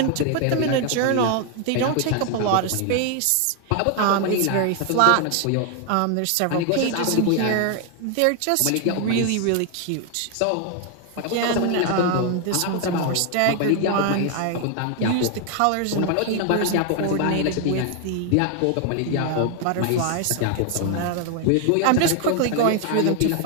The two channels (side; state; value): both; different; correlation 0.00